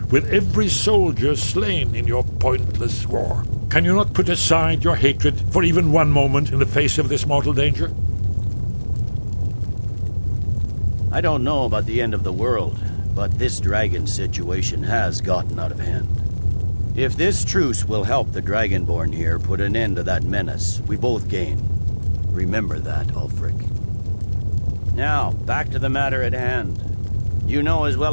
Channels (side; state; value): both; inverted; correlation -1.00